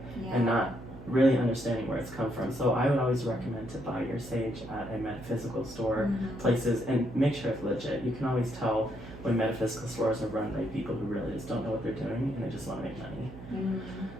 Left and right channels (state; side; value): noise; right; hum, 14 dB below the sound